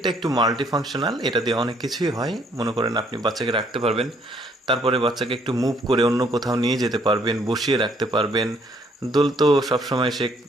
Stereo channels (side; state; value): both; normal; correlation 0.66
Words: একটু মাল্টি ফাংশনাল, এটা দিয়ে অনেক কিছুই হয়। মনে করেন আপনি বাচ্চাকে রাখতে পারবেন, তারপরে বাচ্চাকে একটু মুভ করে অন্য কোথাও নিয়ে যেতে পারবেন, বসিয়ে রাখতে পারবেন। দোল তো সবসময় সে